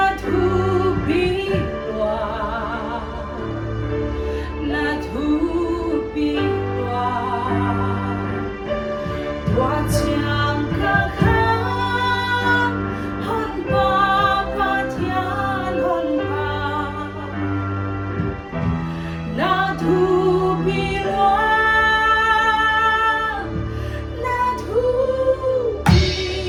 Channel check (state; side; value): identical; both; correlation 1.00